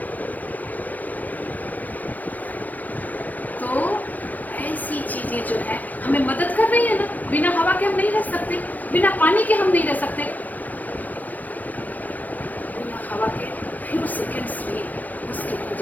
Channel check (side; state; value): right; late; 0.081 ms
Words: तो ऐसी चीजें जो है हमें मदद कर रही है ना, बिना हवा के हम नहीं रह सकते, बिना पानी के हम नहीं रह सकते, बिना हवा के फ्यू सेकेंड्स भी मुश्किल हो